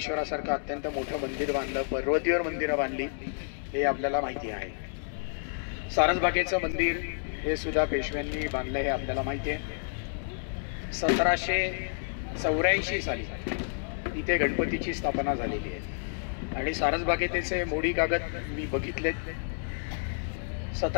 अत्यंत मोठं मंदिर बांधलं, पर्वतीवर मंदिरं बांधली, हे आपल्याला माहिती आहे. सारसबागेचं मंदिर हे सुद्धा पेशव्यांनी बांधलं हे आपल्याला माहिती आहे. 1784 साली इथे गणपतीची स्थापना झालेली आहे आणि सारसबागेचे मोडी कागद मी बघितलेत.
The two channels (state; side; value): silent; right; digital silence